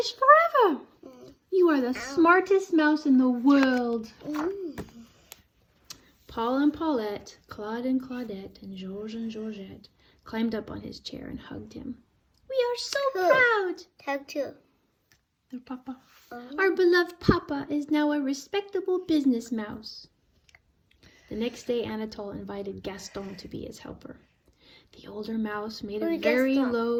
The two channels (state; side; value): identical; both; correlation 1.00